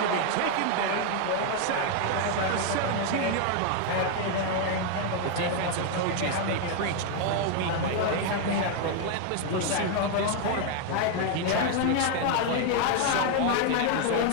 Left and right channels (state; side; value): different; both; correlation 0.01